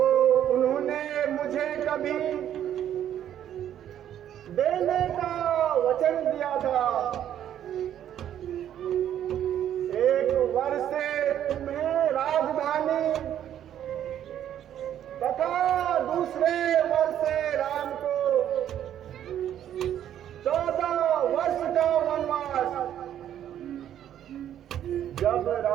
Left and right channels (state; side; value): quieter; left; 10.6 dB